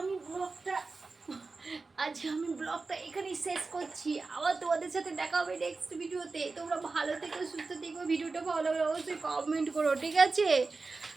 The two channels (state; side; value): quieter; left; 3.9 dB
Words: ব্লগটা এখানেই শেষ করছি। আবার তোমাদের সাথে দেখা হবে নেক্সট ভিডিওতে। তোমরা ভালো থেকো, সুস্থ থেকো। ভিডিওটা ভালো লাগলে অবশ্যই কমেন্ট করো, ঠিক আছে?